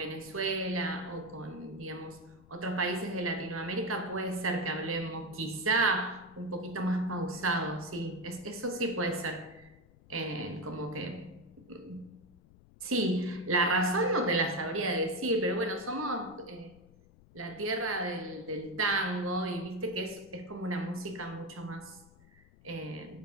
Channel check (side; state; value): left; noise; rumble, 25 dB below the sound